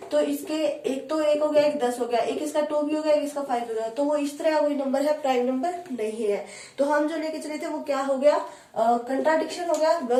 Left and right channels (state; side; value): identical; both; correlation 1.00